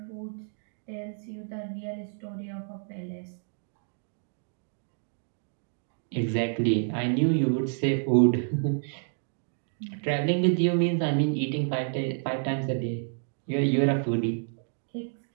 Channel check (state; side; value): silent; left; digital silence